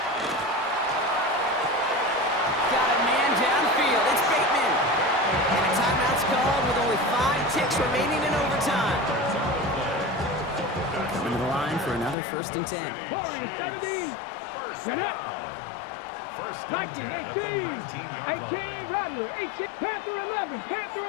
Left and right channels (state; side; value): drops out; right; at 12.2 s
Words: Downfield, it's Bateman. And a timeout's called with only 5 ticks remaining in overtime. Coming to the line for another 1st and 10. Warriors 70. Get up. Viking 18. 18, Rattler 18. Panther 11. Panther